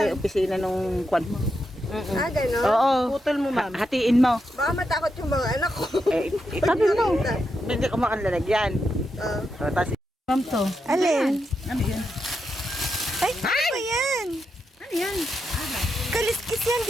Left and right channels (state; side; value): normal; both; correlation 0.85